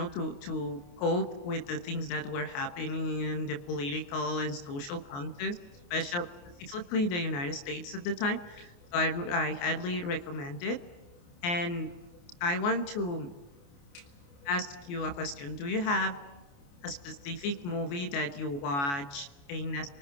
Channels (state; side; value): late; right; 28 ms